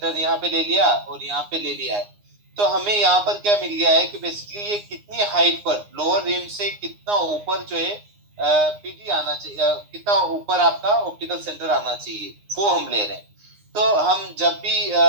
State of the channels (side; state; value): left; late; 9.7 ms